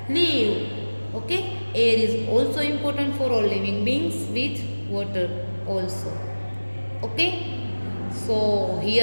live. Okay? Air is also important for all living beings with water also. Okay? So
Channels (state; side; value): inverted; both; correlation -1.00